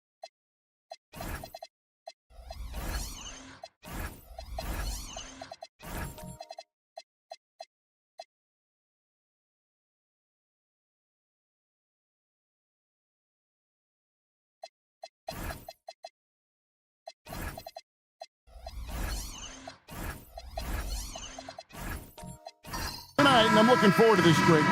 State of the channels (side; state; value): both; identical; correlation 1.00